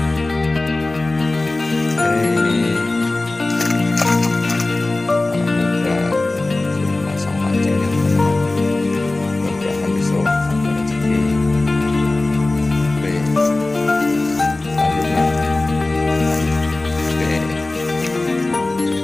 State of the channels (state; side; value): quieter; right; 3.0 dB